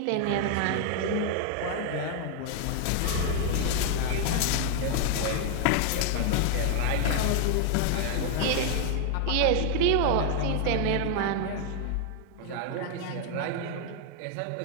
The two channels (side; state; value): both; different; correlation 0.00